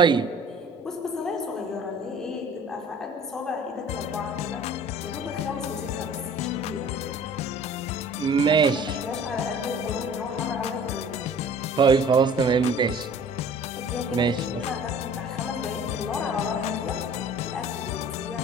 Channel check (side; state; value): both; normal; correlation 0.48